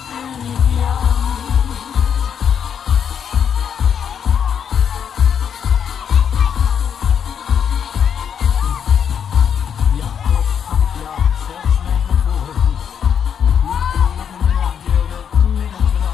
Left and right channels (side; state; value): right; quieter; 8.0 dB